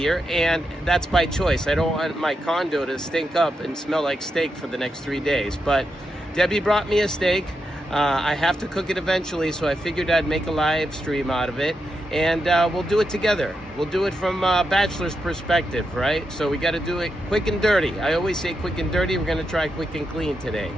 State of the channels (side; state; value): both; normal; correlation 0.85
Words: and that's by choice. I don't want my condo to stink up and smell like steak for the next 3 days, but Debbie brought me a steak. I have to cook it eventually, so I figured I'd make a live stream out of it, and we'll do it together. We'll do it from a bachelor's perspective, right? So we got to do it quick and dirty. I always say quick and dirty. We're going to try quick and clean today.